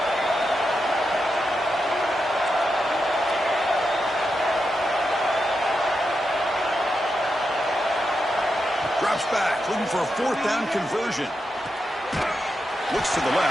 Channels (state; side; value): normal; both; correlation 0.87